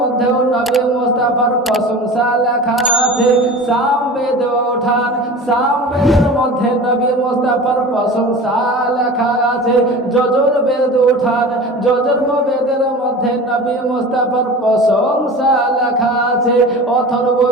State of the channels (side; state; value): both; normal; correlation 0.35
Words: নবী মুস্তাফার প্রশংসা লেখা আছে। সাম বেদ উঠান, সাম বেদের মধ্যে নবী মুস্তাফার প্রশংসা লেখা আছে। যজুর বেদ উঠান, যজুর্ম বেদের মধ্যে নবী মুস্তাফার প্রশংসা লেখা আছে। অথর্ব